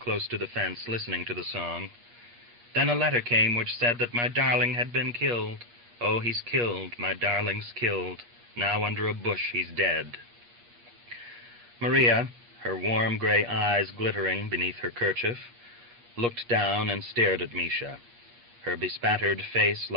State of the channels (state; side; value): late; left; 8.4 ms